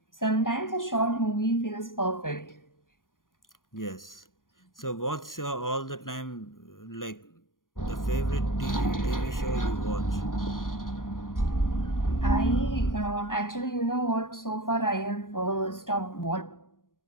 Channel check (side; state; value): right; late; 0.90 ms